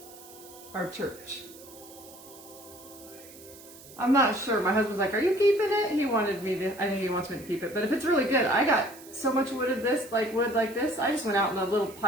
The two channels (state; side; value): noise; right; hiss, 19 dB below the sound